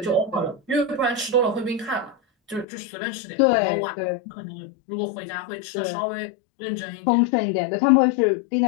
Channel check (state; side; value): drops out; right; at 2.7 s